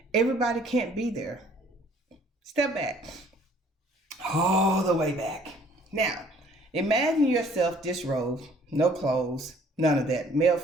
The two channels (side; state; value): both; normal; correlation 0.57